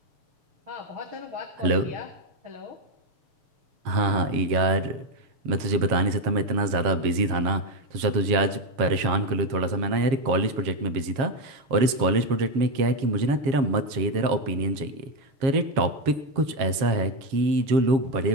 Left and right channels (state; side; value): late; left; 7.4 ms